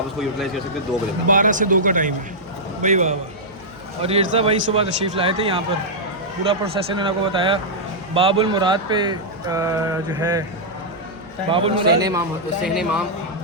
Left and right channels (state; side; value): noise; right; hum, 26 dB below the sound